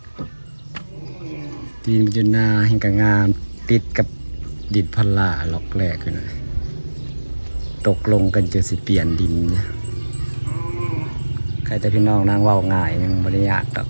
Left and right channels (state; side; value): inverted; both; correlation -1.00